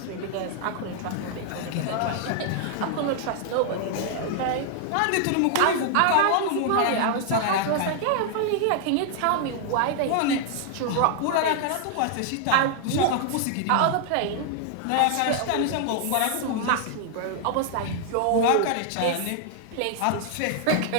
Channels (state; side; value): different; both; correlation 0.00